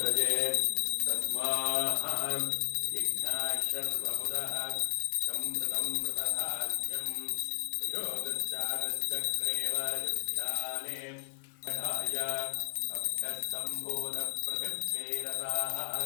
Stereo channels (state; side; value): silent; right; 55 dB below the other